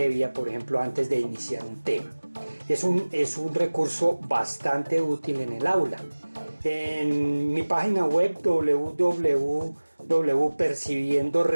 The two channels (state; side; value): inverted; both; correlation -1.00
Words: por ejemplo, antes de iniciar un tema. Es un recurso bastante útil en el aula. En mi página web